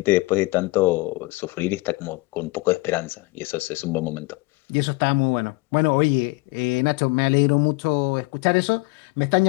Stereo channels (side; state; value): right; quieter; 23.8 dB